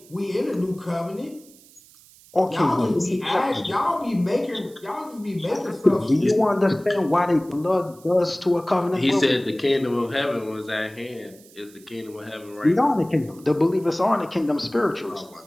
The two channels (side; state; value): right; noise; hiss, 25 dB below the sound